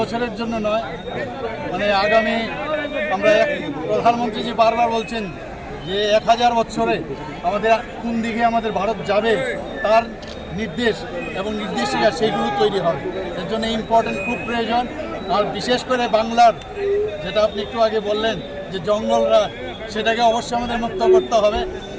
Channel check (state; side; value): identical; both; correlation 1.00